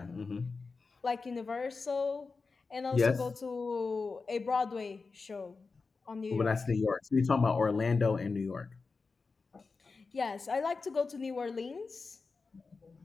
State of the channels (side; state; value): right; quieter; 4.4 dB